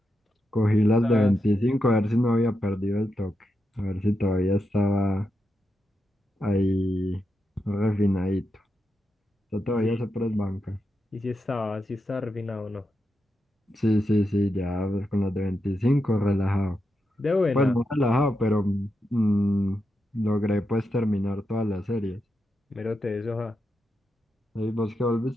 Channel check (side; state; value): both; normal; correlation 0.86